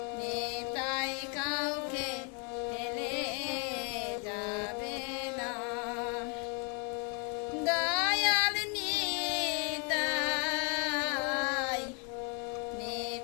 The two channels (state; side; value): quieter; right; 36.4 dB